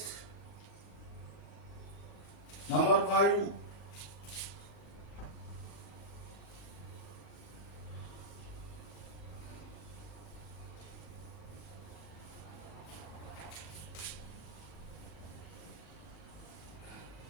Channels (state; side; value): late; right; 39 ms